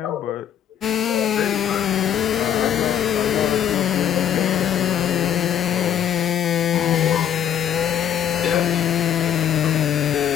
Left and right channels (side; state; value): right; quieter; 9.6 dB